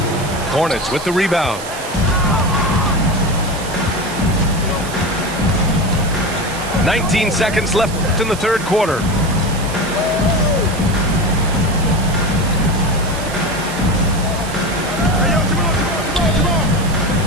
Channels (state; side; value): noise; right; hiss, 13 dB below the sound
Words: Hornets with the rebound. .19 seconds left in the third quarter.